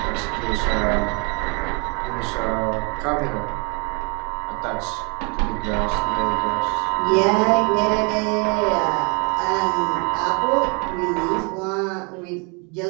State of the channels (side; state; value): left; quieter; 32.7 dB